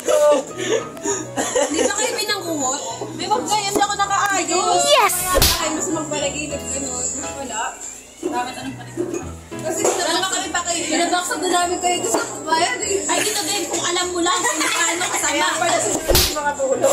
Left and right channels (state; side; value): identical; both; correlation 1.00